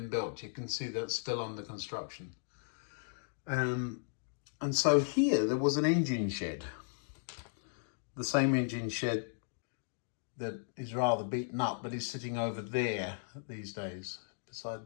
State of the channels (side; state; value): right; silent; digital silence